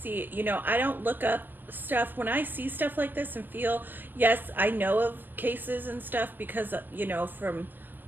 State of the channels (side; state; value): left; late; 0.089 ms